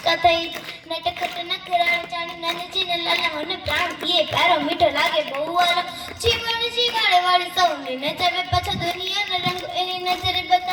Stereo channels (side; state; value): both; identical; correlation 1.00